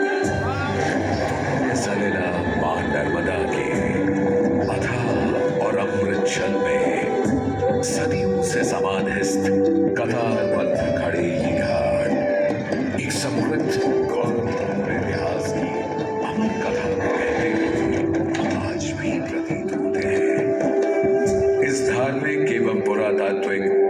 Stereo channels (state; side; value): identical; both; correlation 1.00